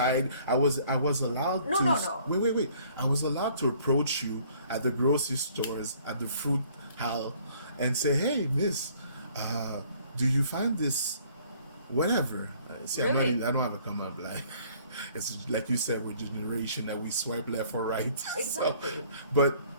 I was allowed to. No. Wait. I was allowed to approach you at the grocery stores, at the fruit aisle, and say, "Hey, miss, do you find this, whatever?" See, really? I don't have a come up like. It's like you said, we're a generation that we swipe left or right. Exactly. But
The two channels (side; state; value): both; inverted; correlation -0.58